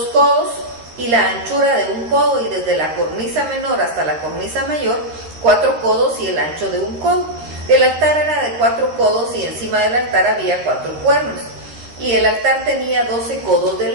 codos y la anchura de un codo, y desde la cornisa menor hasta la cornisa mayor, 4 codos y el ancho de un codo. El altar era de 4 codos y encima del altar había 4 cuernos. Y el altar tenía 12 codos de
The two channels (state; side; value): late; left; 13 ms